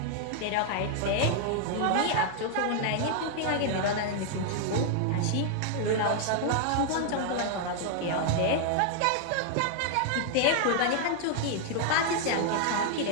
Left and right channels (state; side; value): different; both; correlation 0.00